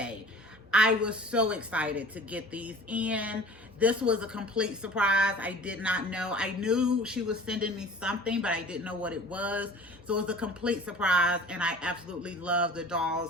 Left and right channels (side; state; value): both; normal; correlation 0.44